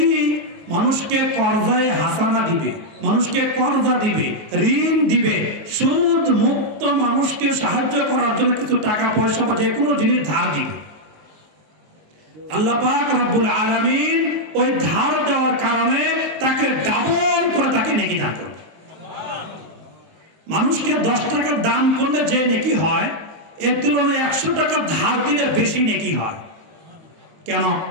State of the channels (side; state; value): left; late; 19 ms